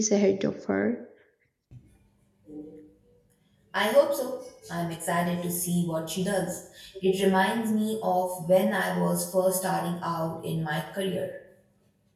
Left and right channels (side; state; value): both; identical; correlation 1.00